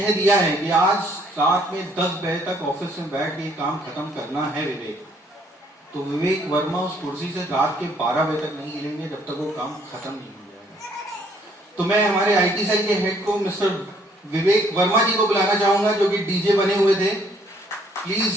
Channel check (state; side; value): normal; both; correlation 0.64